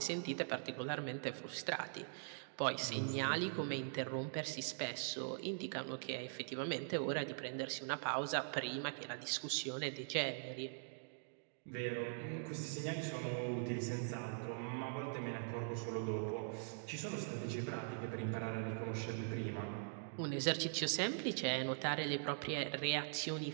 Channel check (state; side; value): silent; left; digital silence